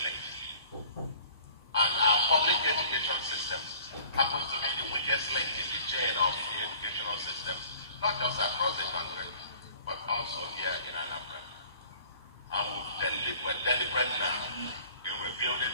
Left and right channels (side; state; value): both; inverted; correlation -0.49